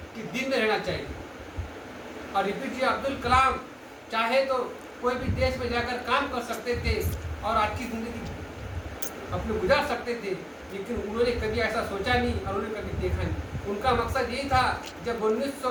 के दिल में रहना चाहिए। और एपीजे अब्दुल कलाम चाहे तो कोई भी देश में जाकर काम कर सकते थे और अच्छी जिंदगी अपनी गुजार सकते थे, लेकिन उन्होंने कभी ऐसा सोचा नहीं और उन्होंने कभी देखा नहीं। उनका मकसद यही था, जब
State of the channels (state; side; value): identical; both; correlation 1.00